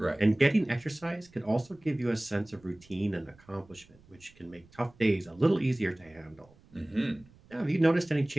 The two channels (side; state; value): right; noise; rumble, 27 dB below the sound